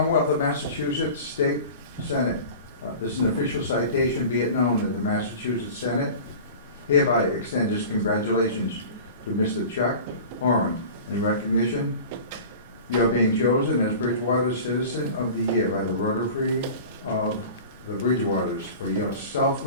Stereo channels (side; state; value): both; inverted; correlation -0.38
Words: of Massachusetts State Senate, this is an official citation. Be it known that the Massachusetts Senate hereby extends its congratulations to Mr. Chuck Horan in recognition you are being chosen as Bridgewater Citizen of the Year by the Rotary of the Bridgewaters for your